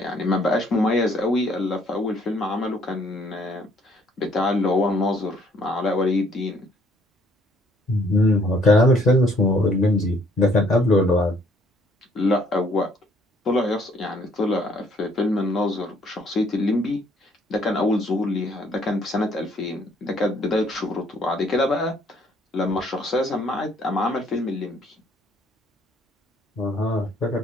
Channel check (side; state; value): both; normal; correlation 0.64